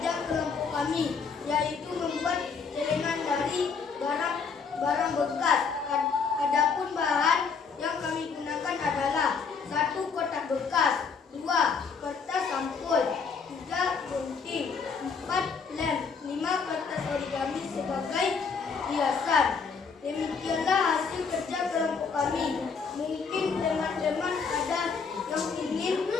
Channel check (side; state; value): right; quieter; 5.5 dB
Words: kelompok kami, yaitu membuat celengan dari barang bekas. Adapun bahan yang kami gunakan adalah 1 kotak bekas, 2 kertas sampul, 3 gunting, 4 lem, 5 kertas origami sebagai hiasan. Demikianlah hasil kerja kelompok kami. Mungkin teman-teman ada yang ingin